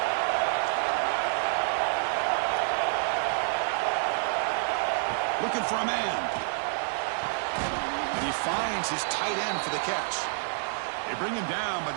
Looking for a man. And he finds his tight end for the catch. They bring him down, but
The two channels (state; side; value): silent; left; digital silence